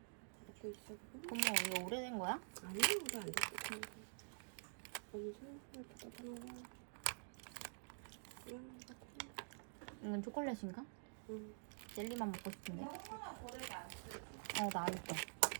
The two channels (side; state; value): left; silent; digital silence